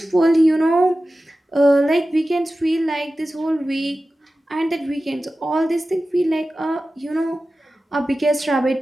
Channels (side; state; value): both; normal; correlation 0.95